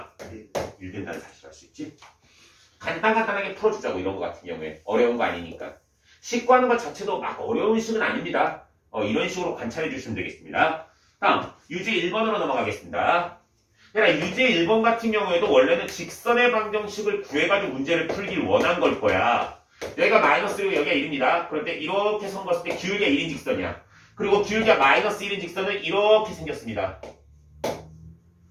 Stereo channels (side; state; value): both; identical; correlation 1.00